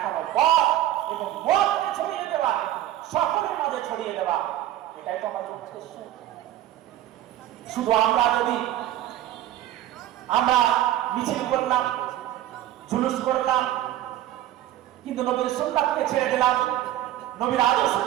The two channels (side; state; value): left; quieter; 13.4 dB